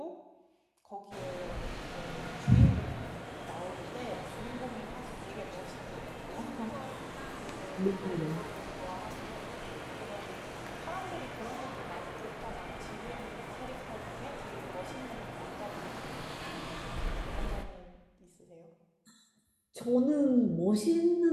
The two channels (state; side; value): identical; both; correlation 1.00